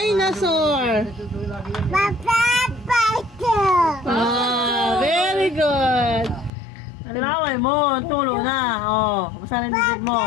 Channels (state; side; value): drops out; right; at 6.5 s